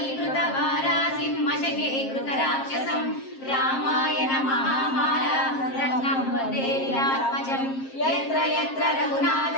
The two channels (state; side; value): late; right; 7.5 ms